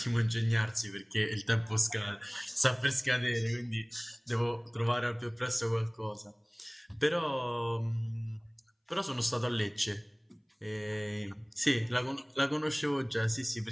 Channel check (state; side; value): identical; both; correlation 1.00